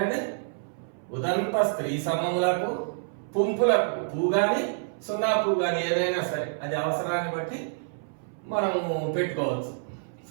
ఉదంత స్త్రీ సమములకు, పుంపులకు, పూ గాని 0 పూ గాని ఏదైనా సరే అది అవసరాన్ని బట్టి మనము పెట్టుకోవచ్చు.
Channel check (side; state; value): left; silent; 59 dB below the other